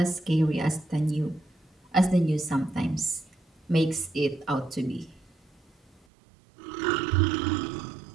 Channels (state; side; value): drops out; left; at 6.1 s